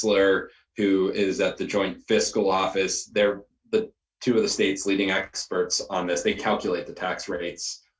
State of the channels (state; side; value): identical; both; correlation 1.00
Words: who is at the Joint Fiscal Office. They're the two of the state's leading experts on this. They calculate the tax rates,